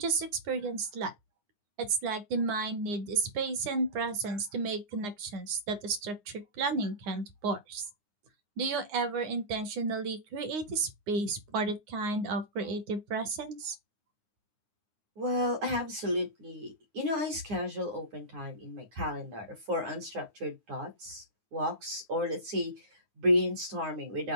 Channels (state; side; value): late; left; 9.7 ms